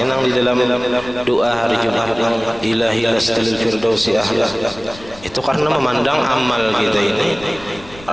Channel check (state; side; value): noise; left; rumble, 20 dB below the sound